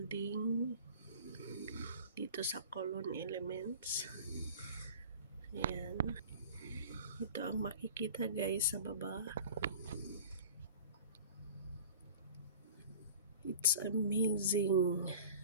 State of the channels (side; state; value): both; inverted; correlation -0.42